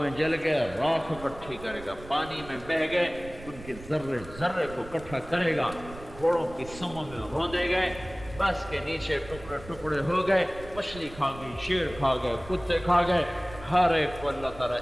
میں جل گئے راکھ اکٹھی کرے گا، پانی میں بہہ گئے ان کے ذرے ذرے کو اکٹھا کرے گا، گھوڑوں کی سموں میں روندے گئے، بس کے نیچے ٹکڑے ٹکڑے ہو گئے، مچھلی کھا گئی، شیر کھا گئے، کتے کھا گئے، ہر ایک کو اللہ تعالیٰ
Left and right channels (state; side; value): noise; right; rumble, 16 dB below the sound